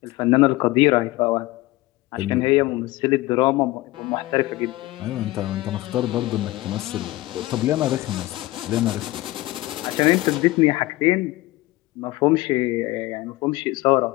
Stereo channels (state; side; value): quieter; right; 18.7 dB